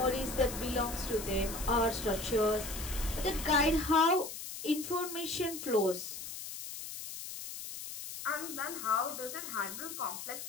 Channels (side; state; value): left; noise; hiss, 9 dB below the sound